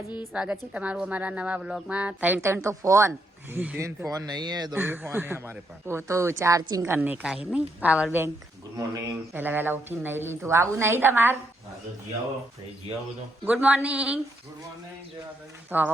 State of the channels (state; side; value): normal; both; correlation 0.77